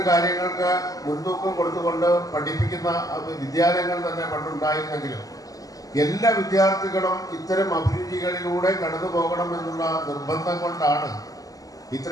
കാര്യങ്ങൾക്ക് മുൻതൂക്കം കൊടുത്തുകൊണ്ട് പഠിപ്പിക്കുന്ന വിദ്യാലയങ്ങൾ തന്നെ പണ്ടുണ്ടായിരുന്നെങ്കിലും എല്ലാ വിദ്യാർത്ഥികളും ഇത്തരം അഭിരുചികളിലൂടെ കടന്നു പോകണമെന്നുള്ള നിർബന്ധം കൊണ്ടാണ്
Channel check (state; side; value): late; right; 0.17 ms